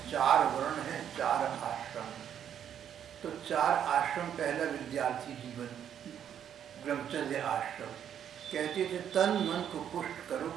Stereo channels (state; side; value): quieter; left; 9.2 dB